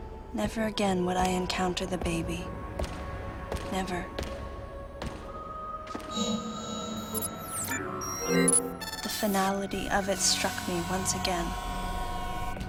Never again would I encounter the baby. Never. The finality of it struck me once again.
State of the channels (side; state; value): both; identical; correlation 1.00